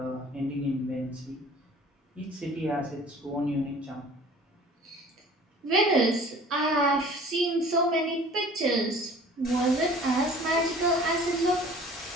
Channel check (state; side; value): normal; both; correlation 0.47